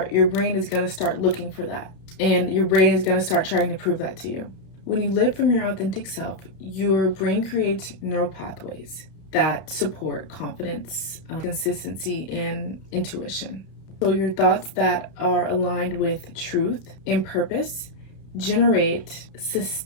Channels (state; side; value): late; right; 31 ms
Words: your brain is gonna start looking for that. And your brain is gonna start trying to prove that to you. When you live from your authentic self, your brain creates neural pathways that support confidence, consistency, and intuition. So your thoughts that are aligned with truth and purpose generate